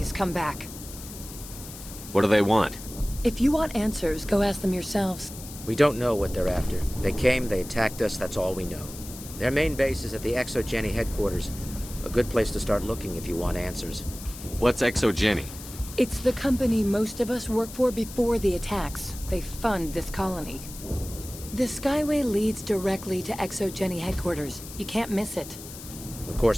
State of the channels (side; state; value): left; noise; hiss, 14 dB below the sound